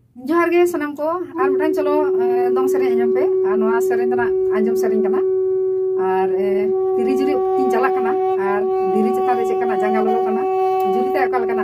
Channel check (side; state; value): both; identical; correlation 1.00